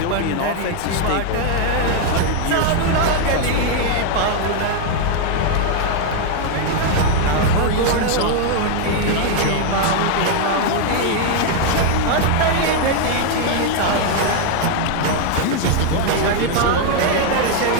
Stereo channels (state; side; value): different; both; correlation 0.00